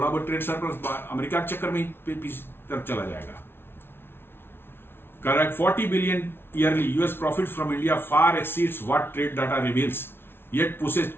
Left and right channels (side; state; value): right; late; 0.11 ms